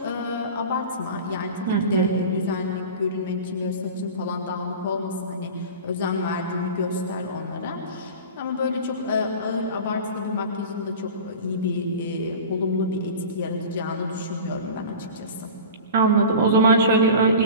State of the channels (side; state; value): both; inverted; correlation -0.34